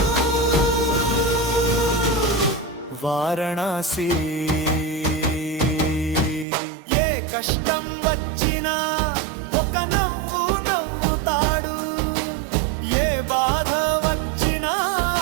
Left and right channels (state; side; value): drops out; left; at 6.5 s